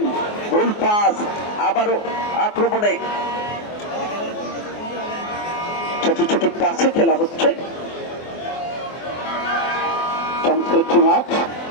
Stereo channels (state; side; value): late; right; 24 ms